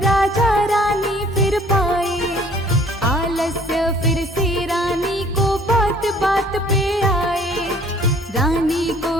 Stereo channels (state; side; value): normal; both; correlation 0.56